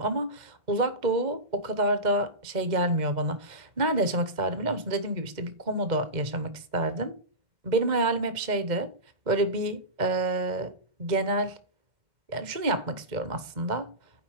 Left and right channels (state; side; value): late; left; 2.0 ms